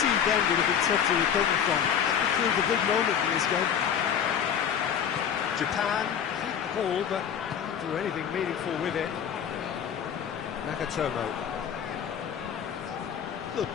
then would have been tough to recover from. That could prove a big moment in this game. Japan keep the ball, but can't do anything meaningful with it. Nagatomo. Look,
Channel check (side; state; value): right; quieter; 8.3 dB